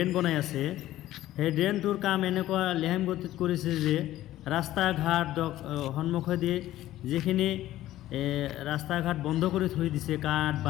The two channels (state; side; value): quieter; right; 14.4 dB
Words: বনাই আছে, সেই ড্ৰেইনটোৰ কাম এনেকুৱা লেহেম গতিত কৰিছে যে ৰাস্তা ঘাট সন্মুখেদি যিখিনি ৰাস্তা ঘাট বন্ধ কৰি থৈ দিছে কাঠ